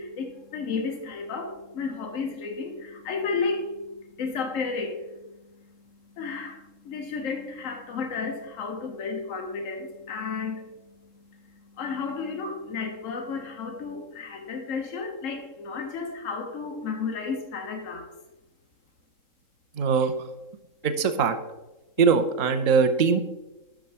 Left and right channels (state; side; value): late; right; 3.7 ms